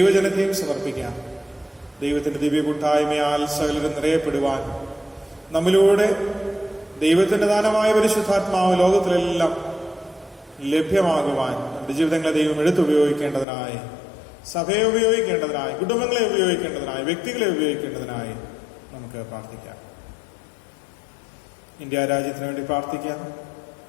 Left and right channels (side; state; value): right; drops out; at 13.5 s